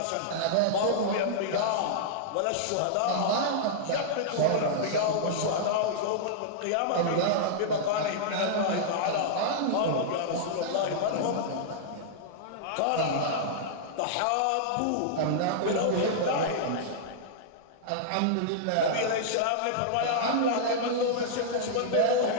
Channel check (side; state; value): both; different; correlation -0.02